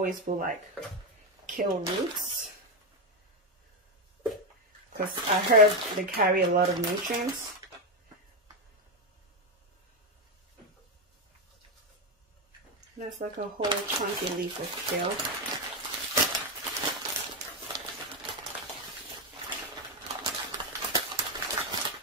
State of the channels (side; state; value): both; normal; correlation 0.07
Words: put like kale roots because I heard they carry a lot of nutrients. That's like a whole chunky leaf of kale.